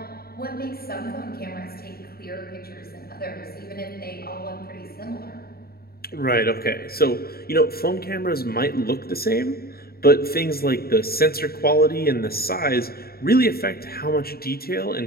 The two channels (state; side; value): late; right; 0.44 ms